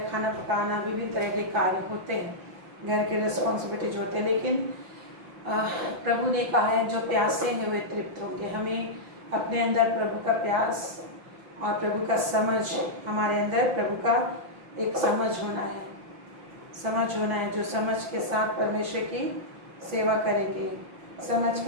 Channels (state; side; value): late; left; 5.8 ms